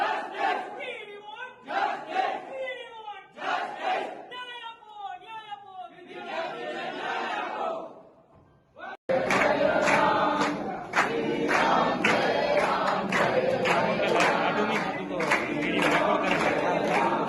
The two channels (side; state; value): both; identical; correlation 1.00